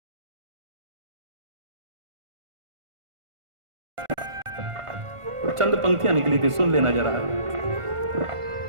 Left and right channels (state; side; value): late; left; 1.5 ms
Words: चंद पंक्तियां निकली थी, सुन लेना जरा।